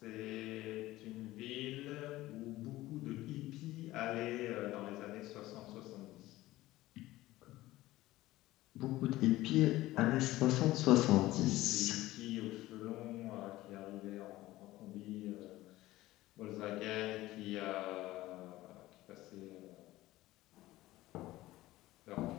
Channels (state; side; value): quieter; right; 17.1 dB